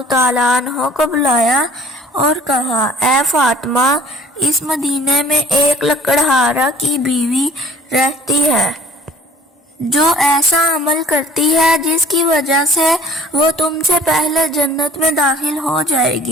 تعالیٰ عنہ کو بلایا اور کہا، اے فاطمہ، اس مدینے میں ایک لکڑہارا کی بیوی رہتی ہے جو ایسا عمل کرتی ہے جس کی وجہ سے وہ تم سے پہلے جنت میں داخل ہو جائے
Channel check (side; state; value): both; normal; correlation 0.51